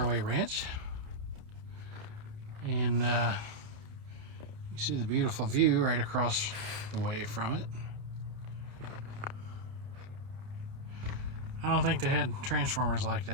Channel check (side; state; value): left; late; 30 ms